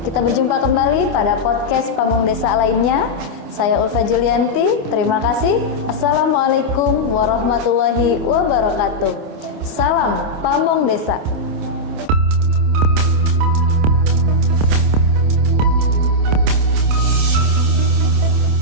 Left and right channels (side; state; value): left; late; 27 ms